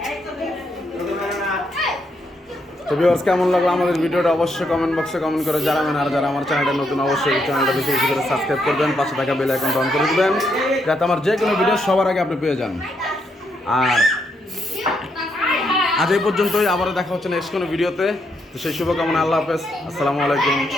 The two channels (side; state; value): both; normal; correlation 0.77